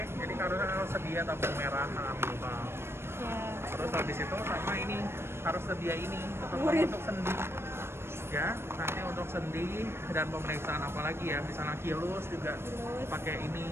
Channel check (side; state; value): left; late; 0.12 ms